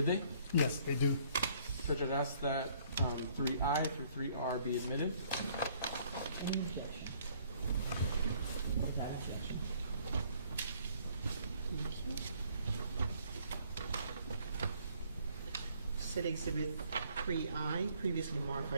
they? Yes, they do. So Judge, ask that 3I through 3R be admitted. State Exhibit 3I, previously marked for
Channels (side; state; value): both; inverted; correlation -0.62